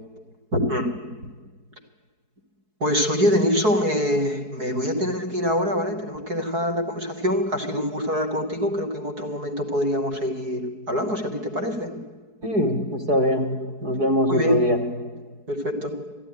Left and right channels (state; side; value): late; left; 4.7 ms